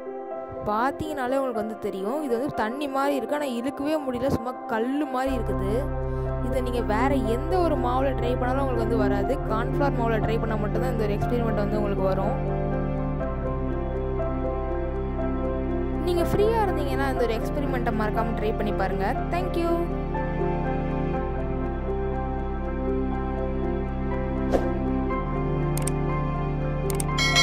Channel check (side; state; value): both; identical; correlation 1.00